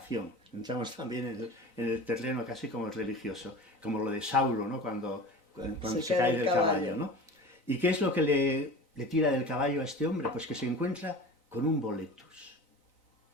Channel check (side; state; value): right; late; 3.9 ms